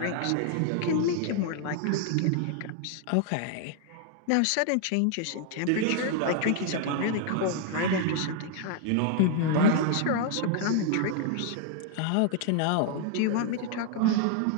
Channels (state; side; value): different; both; correlation 0.00